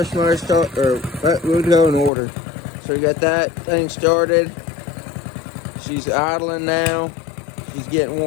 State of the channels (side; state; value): right; drops out; at 2.1 s